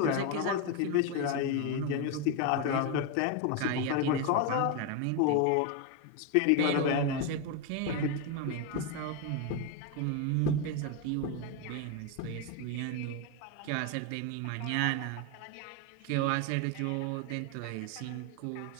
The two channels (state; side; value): different; both; correlation 0.02